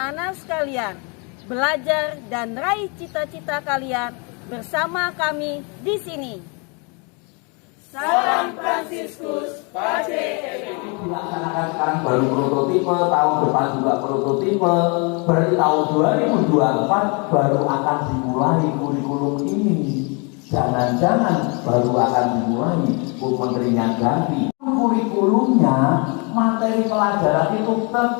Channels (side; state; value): right; quieter; 33.0 dB